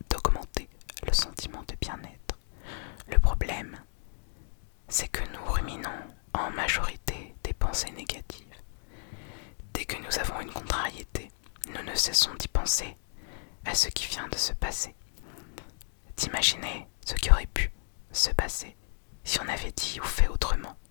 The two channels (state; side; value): silent; right; digital silence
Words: d'augmenter le sentiment de bien-être. Le problème, c'est que nous ruminons en majorité des pensées négatives. Dès que nous avons une contrariété, nous ne cessons d'y penser à ce qui vient de se passer. D'imaginer ce qui aurait pu se passer si on avait dit ou fait autrement.